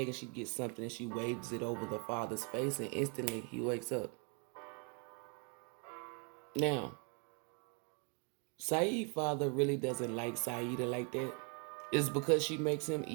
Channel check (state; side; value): quieter; left; 34.5 dB